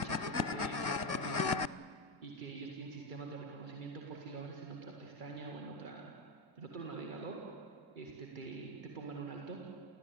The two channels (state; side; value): late; left; 2.0 ms